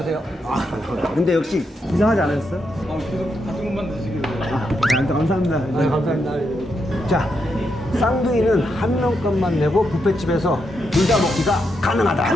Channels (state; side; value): normal; both; correlation 0.82